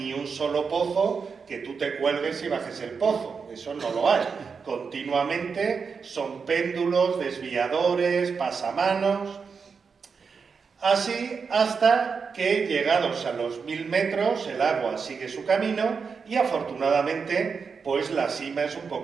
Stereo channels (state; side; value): quieter; left; 5.5 dB